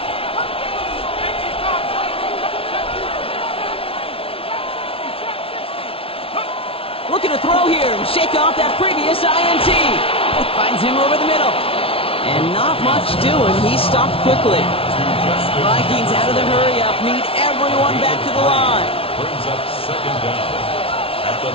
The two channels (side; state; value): right; late; 0.26 ms